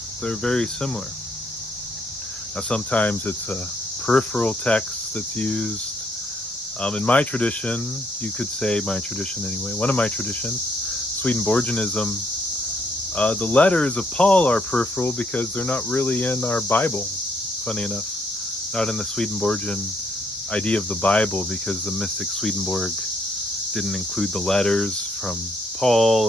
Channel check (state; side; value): normal; both; correlation 0.71